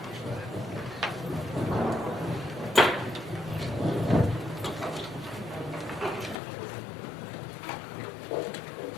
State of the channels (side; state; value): right; drops out; at 6.4 s